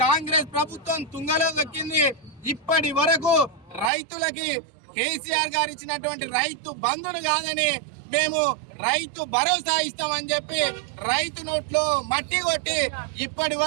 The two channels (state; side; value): drops out; left; at 3.9 s